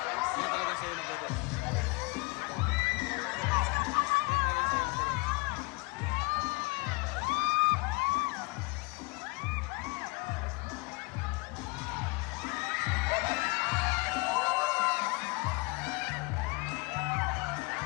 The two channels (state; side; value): quieter; right; 27.2 dB